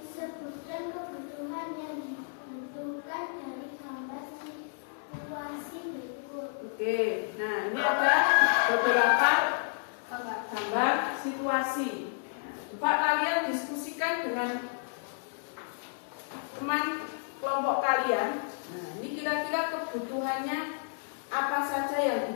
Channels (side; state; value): right; silent; digital silence